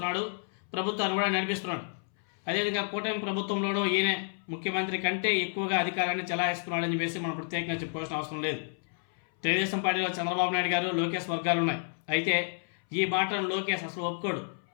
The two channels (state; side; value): silent; right; 58 dB below the other